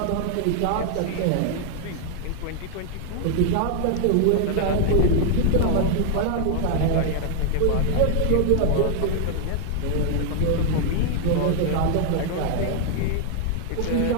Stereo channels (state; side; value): different; both; correlation 0.00